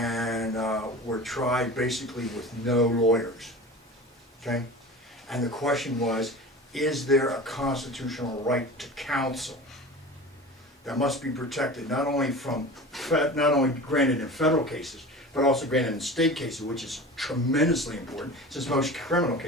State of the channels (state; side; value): normal; both; correlation 0.35